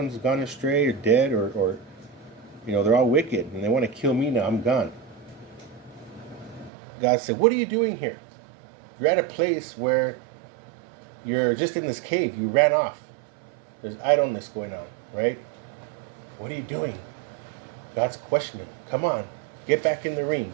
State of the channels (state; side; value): drops out; left; at 6.7 s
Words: gone astray or dead or they're all wicked and they want to kill me now. I'm gone. God said, "What are you doing here? You're at a place where you're just in this cave. You ran off. There's idleness going on, right? What are you doing?" God's questioning. Come on, get back in the ring,